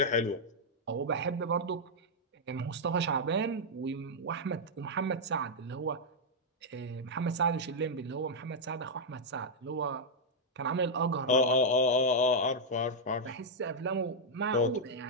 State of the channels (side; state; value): both; normal; correlation -0.04